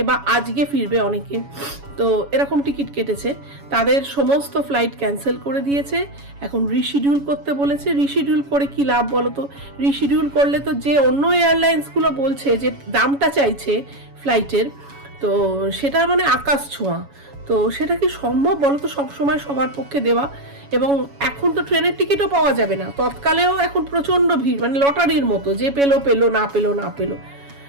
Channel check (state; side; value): late; left; 7.1 ms